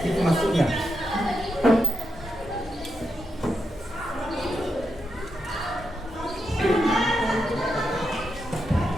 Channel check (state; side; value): normal; both; correlation 0.85